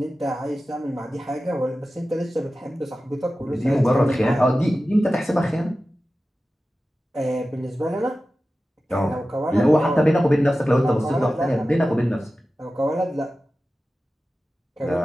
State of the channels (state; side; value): normal; both; correlation 0.94